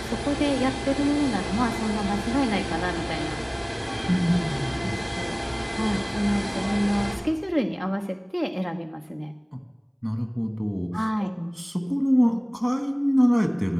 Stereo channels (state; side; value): identical; both; correlation 1.00